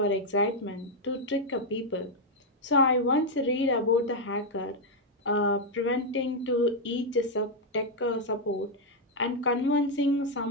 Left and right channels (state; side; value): normal; both; correlation 0.00